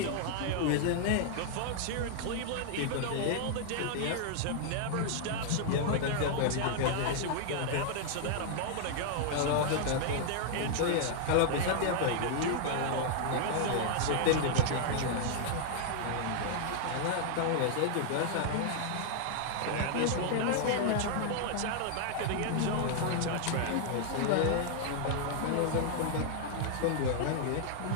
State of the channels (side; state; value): both; different; correlation 0.00